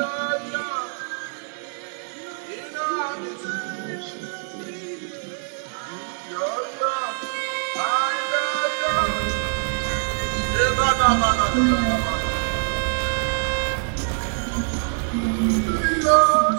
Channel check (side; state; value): left; silent; 63 dB below the other